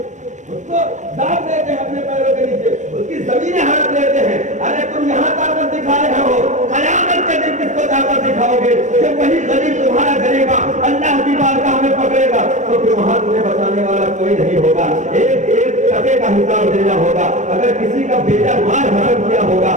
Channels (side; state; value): left; late; 0.35 ms